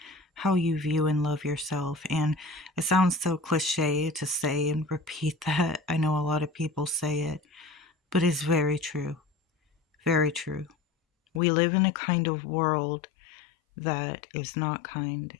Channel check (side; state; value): right; drops out; at 11.4 s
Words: how you view and love yourself. And it sounds so cliche to say and repeat that. I know a lot of people say it, but it's very true. Very true. We live in a kind of world that is not kind,